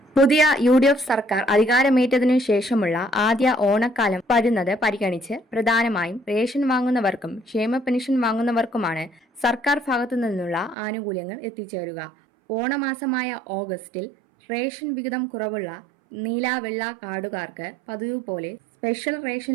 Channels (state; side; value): drops out; left; at 10.8 s